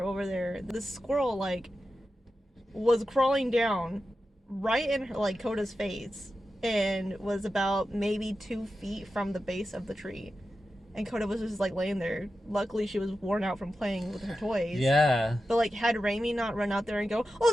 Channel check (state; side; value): normal; both; correlation 0.91